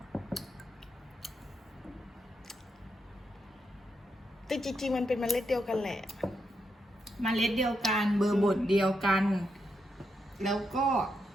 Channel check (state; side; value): normal; both; correlation 0.82